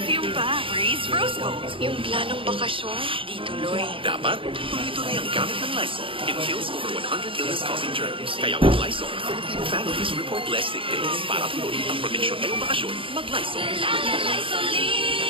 pa. Breeze Rose Gold. Yung planong bakasyon, di tuloy. Dapat, tuloy-tuloy ang gamit ng Lysol. It kills over 100 illness-causing germs. Kaya with Lysol, Filipino families report less sick days. Para tuloy ang proteksyon ngayong bakasyon, mag-Lysol. La la la,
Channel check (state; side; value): late; left; 0.25 ms